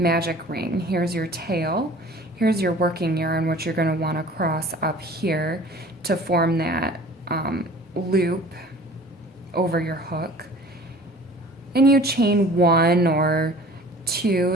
ring. Here's your tail. Here's your working yarn, which you're going to want to cross up here to form that loop over your hook. And you chain 1 or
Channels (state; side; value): normal; both; correlation 0.46